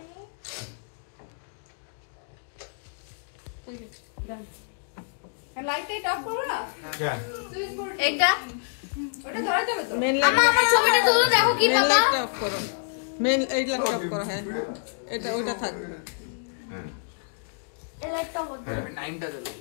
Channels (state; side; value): silent; right; digital silence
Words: লাইট অফ করো না। হ্যাঁ। এইটা ওটা ধরে যাবে তো। মেন লাইট আমার ছবিটা তুলে দেখো কি মেন বাবা। লাইট অফ করো। মেন এই লাইট অফ করো। হ্যাঁ এটা ওইটা থাক। এই লাইটটা বন্ধ। টাইমটা চলে।